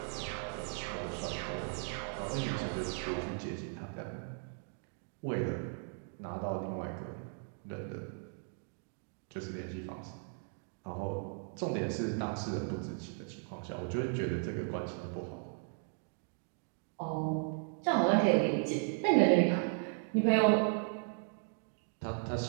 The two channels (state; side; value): silent; left; 53 dB below the other